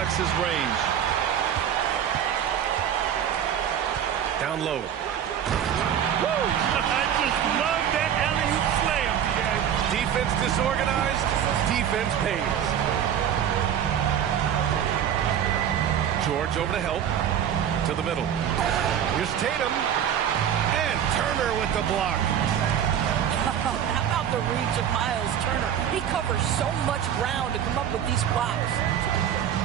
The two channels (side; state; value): left; quieter; 9.3 dB